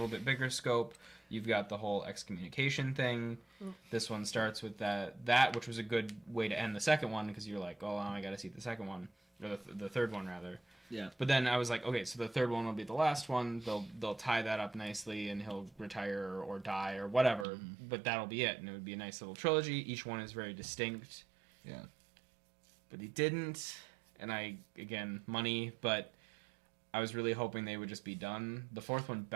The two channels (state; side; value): drops out; left; at 17.4 s